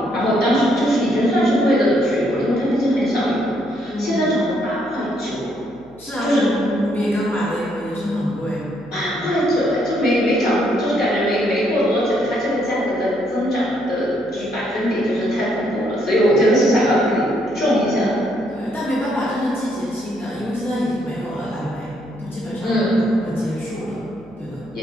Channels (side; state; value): left; noise; hum, 27 dB below the sound